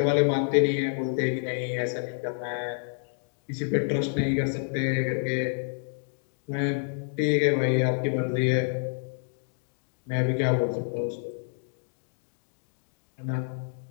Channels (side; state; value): right; silent; digital silence